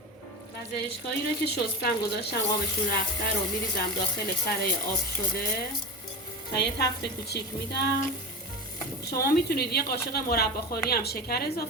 و زرشکایی رو که شستم گذاشتم آبشون رفته رو میریزم داخل کره آب شده و یه تفت کوچیک میدم. شما میتونید یه قاشق مرباخوری هم شکر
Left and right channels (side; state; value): both; normal; correlation 0.25